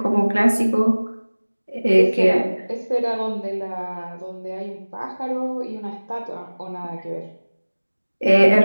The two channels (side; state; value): both; inverted; correlation -1.00